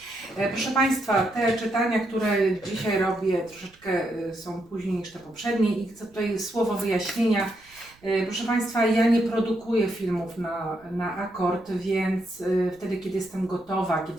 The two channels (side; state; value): right; noise; rumble, 29 dB below the sound